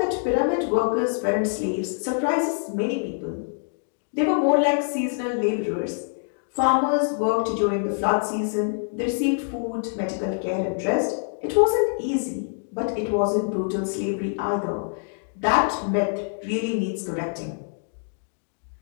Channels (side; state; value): right; silent; digital silence